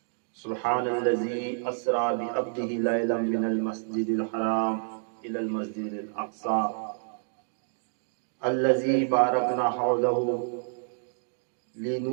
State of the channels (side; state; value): left; silent; digital silence